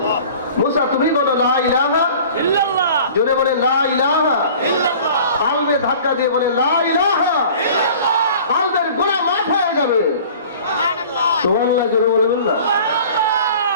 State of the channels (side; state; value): both; inverted; correlation -0.45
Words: মুসা তুমি বলো লা ইলাহা ইল্লাল্লাহ, জোরে বলে লা ইলাহা ইল্লাল্লাহ, কালবে ধাক্কা দিয়ে বলে লা ইলাহা ইল্লাল্লাহ, কালবের গুনাহ মাফ হয়ে যাবে। সুবহানাল্লাহ, সুবহানাল্লাহ, জোরে বলবেন না?